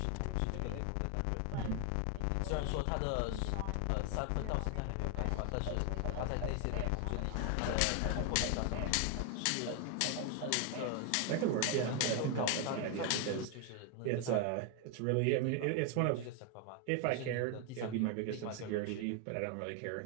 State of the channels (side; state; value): both; different; correlation 0.01